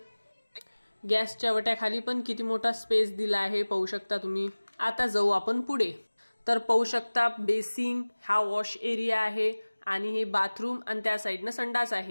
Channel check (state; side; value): inverted; both; correlation -1.00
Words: गॅसच्या वट्याखाली पण किती मोठा स्पेस दिला आहे पाहू शकता तुम्ही। आता जाऊ आपण पुढे। तर पाहू शकता बेसिंग हा वॉश एरिया आहे, आणि हे बाथरूम, आणि त्या साइडनं संडास